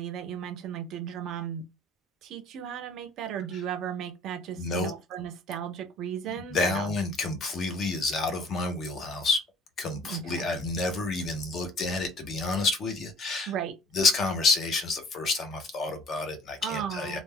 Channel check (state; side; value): normal; both; correlation 0.51